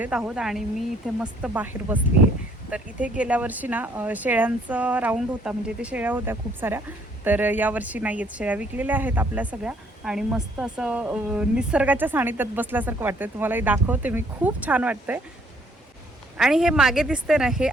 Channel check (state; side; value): normal; both; correlation 0.64